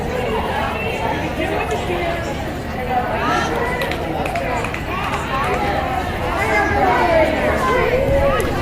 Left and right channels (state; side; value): identical; both; correlation 1.00